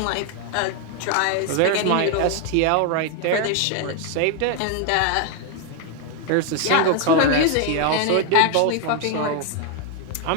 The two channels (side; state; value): both; different; correlation 0.00